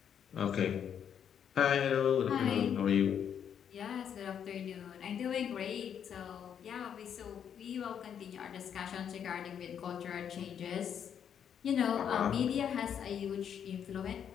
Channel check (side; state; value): right; quieter; 8.4 dB